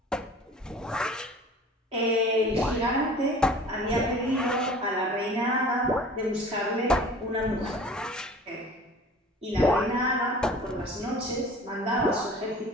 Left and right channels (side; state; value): both; normal; correlation 0.45